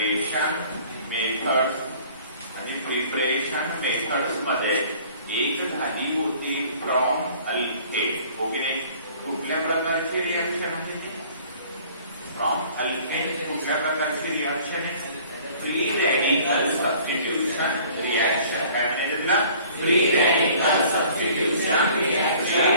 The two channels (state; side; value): inverted; both; correlation -0.52